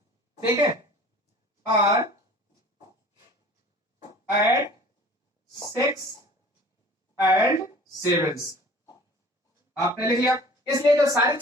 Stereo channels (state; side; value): normal; both; correlation 0.47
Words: ठीक है, are at 6 and 7। आपने लिख लिया। इसलिए जो सारी